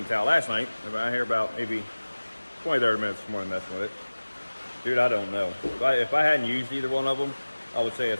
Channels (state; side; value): inverted; both; correlation -1.00